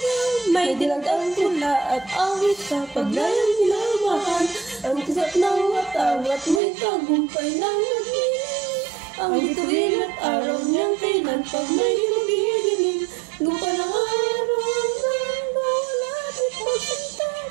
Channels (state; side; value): drops out; left; at 6.6 s